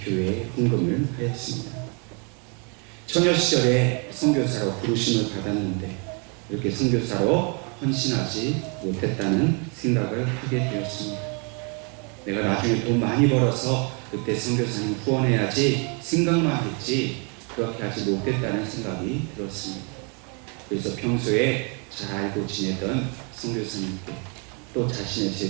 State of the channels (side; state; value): left; quieter; 35.5 dB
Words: 교회에 헌금을 하였습니다. 처녀 시절에 선교사로 부르심을 받았는데 이렇게 선교사로 헌신하지 못했다는 생각을 하게 되었습니다. 내가 나중에 돈 많이 벌어서 그때 선교사님 후원해야지 생각만 했지 그렇게 하지 못했다는 생각이 들었습니다. 그래서 평소에 잘 알고 지내던 선교사님께 또 자신의